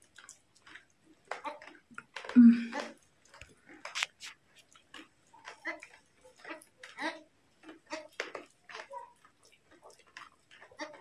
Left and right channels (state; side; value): identical; both; correlation 1.00